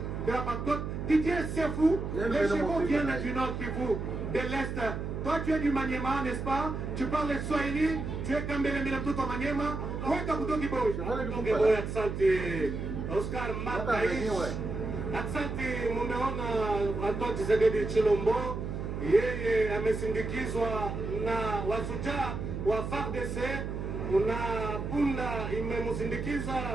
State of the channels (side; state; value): right; noise; hum, 4 dB below the sound